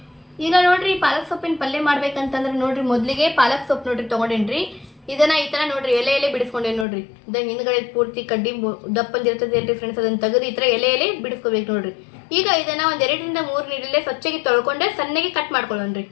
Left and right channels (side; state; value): right; drops out; at 6.9 s